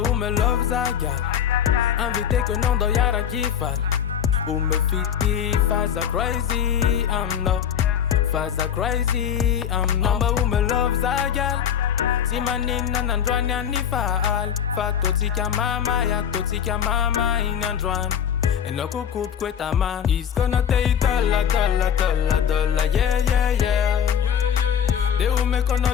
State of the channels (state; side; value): quieter; right; 8.6 dB